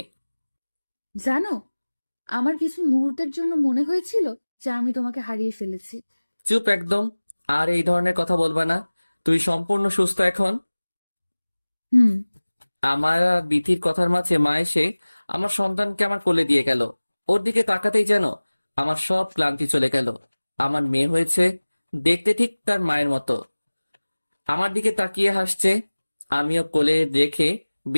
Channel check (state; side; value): inverted; both; correlation -1.00